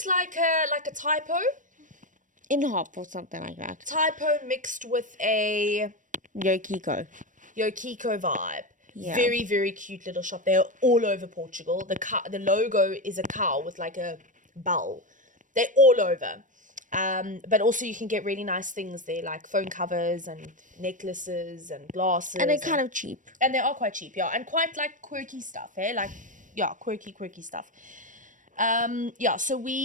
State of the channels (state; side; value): late; left; 0.37 ms